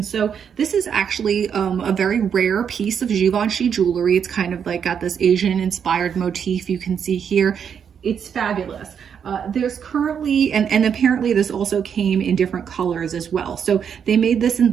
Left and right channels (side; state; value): left; quieter; 7.6 dB